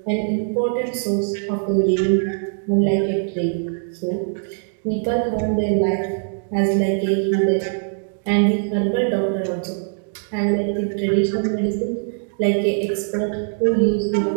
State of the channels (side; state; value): left; silent; digital silence